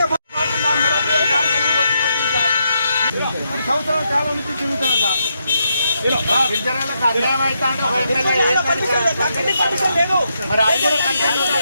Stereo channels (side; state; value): both; inverted; correlation -0.81